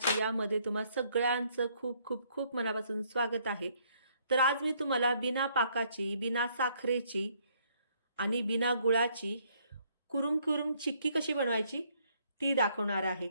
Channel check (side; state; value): both; inverted; correlation -0.68